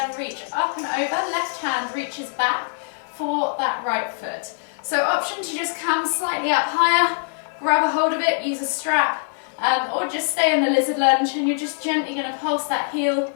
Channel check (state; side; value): silent; right; 63 dB below the other